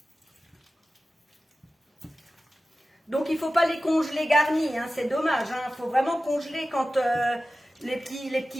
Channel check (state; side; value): normal; both; correlation 0.94